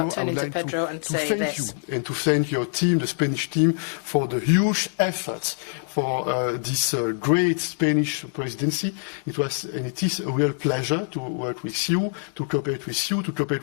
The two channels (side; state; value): right; silent; digital silence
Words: turning to Pedro and say this. And to thank your team, the Spanish team, for the huge efforts for this great Spanish presidency. It was and it is a real pleasure to work with you, to cooperate